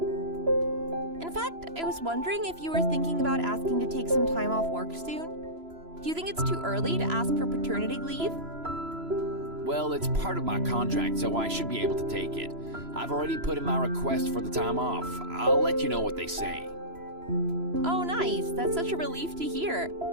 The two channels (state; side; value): late; left; 3.0 ms